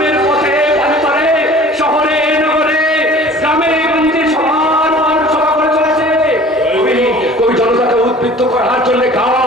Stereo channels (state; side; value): normal; both; correlation 0.46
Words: পথে পারে পারে, শহরে নগরে, গ্রামে গঞ্জে সবার সভা করে চলেছে। কবি জনতাকে উদ্বুদ্ধ করার জন্য